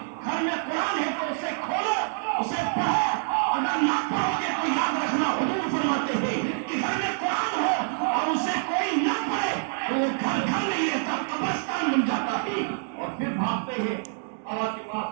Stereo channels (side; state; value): left; silent; 61 dB below the other